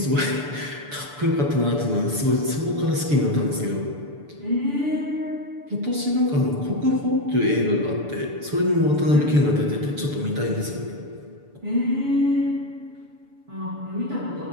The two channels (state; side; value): late; left; 6.9 ms